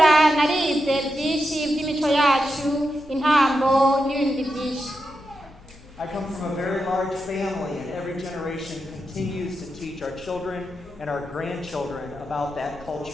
narize byinshi by'imico yacu, intambo n'ibindi byinshi. I come from a very large family, and every generation continues to teach our children and our grandchildren about that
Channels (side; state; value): left; noise; hum, 23 dB below the sound